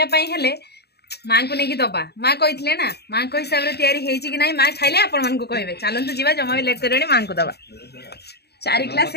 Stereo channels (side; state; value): right; late; 0.48 ms